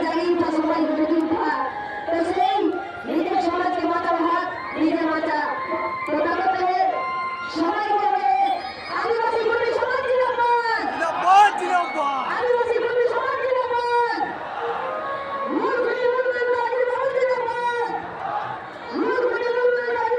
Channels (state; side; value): identical; both; correlation 1.00